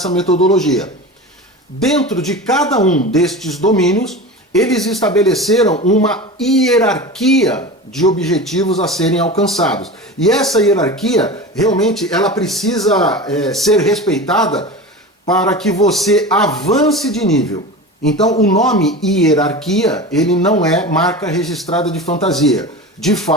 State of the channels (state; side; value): normal; both; correlation 0.30